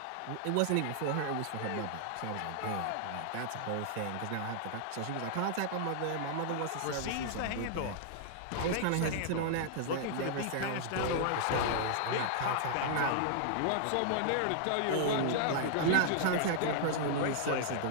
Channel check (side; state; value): both; different; correlation -0.01